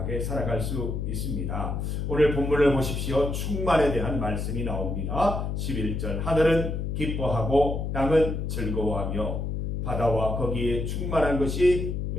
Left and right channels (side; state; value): left; noise; hum, 2 dB below the sound